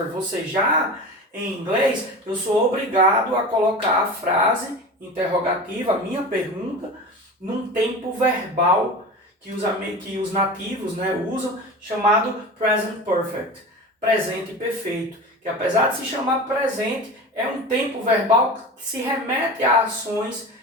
você já, em inglês, eu sou obrigado a colocar a frase interrogativa, a minha pergunta, num tempo verbal que os nativos, né, usam, chamado present perfect, presente perfeito, que apesar de se chamar presente, é um tempo verbal que se remete a ações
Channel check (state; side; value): normal; both; correlation 0.31